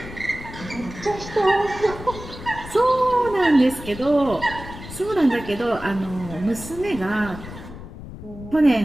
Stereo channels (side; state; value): left; noise; rumble, 13 dB below the sound